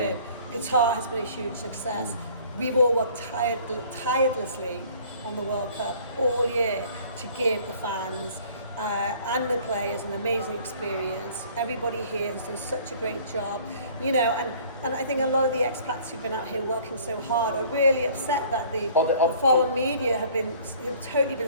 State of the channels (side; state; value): both; inverted; correlation -0.53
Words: Qatar has been a huge success. We've all worked tirelessly on the World Cup all year to give the fans and the players an amazing experience. Everybody here has done such a great job, and I think a lot of the expats who've been out here working so hard are really upset that the foreign media have totally been